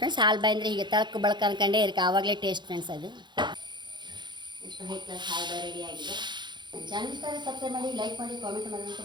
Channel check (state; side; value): late; left; 0.22 ms